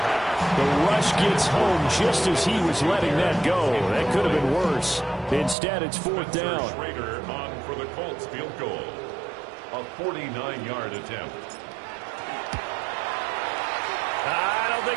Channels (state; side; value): drops out; left; at 5.6 s